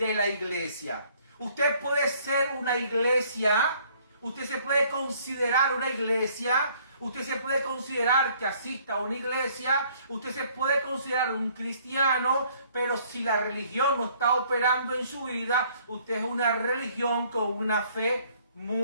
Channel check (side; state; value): both; inverted; correlation -0.61